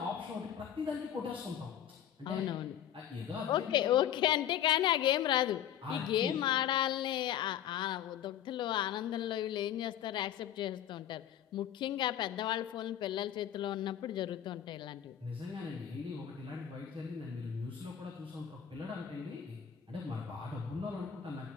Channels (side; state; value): right; quieter; 10.2 dB